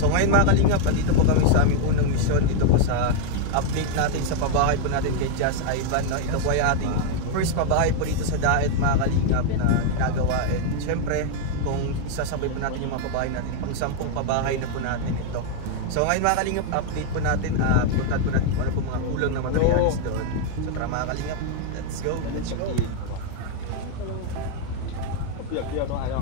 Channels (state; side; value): different; both; correlation 0.00